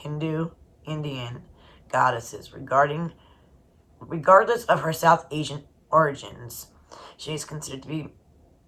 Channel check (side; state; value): both; identical; correlation 1.00